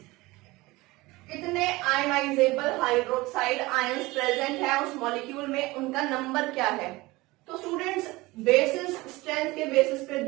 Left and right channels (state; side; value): quieter; left; 21.1 dB